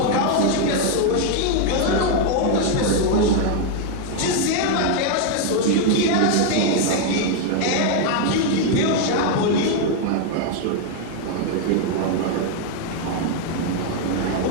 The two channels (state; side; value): different; both; correlation 0.01